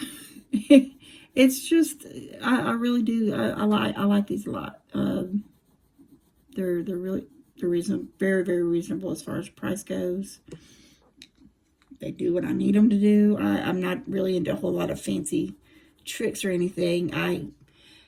it's just, I really do. I like these a lot. They're reasonable, very, very reasonable as far as price goes. They do what I need them to do. I'm not really into a whole lot of fancy tricks or anything. I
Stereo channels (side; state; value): both; identical; correlation 1.00